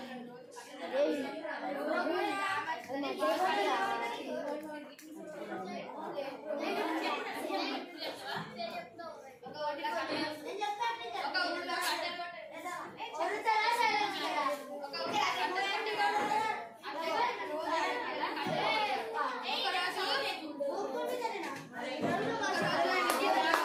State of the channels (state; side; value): identical; both; correlation 1.00